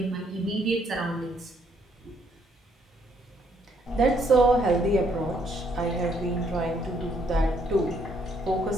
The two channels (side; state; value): both; normal; correlation 0.69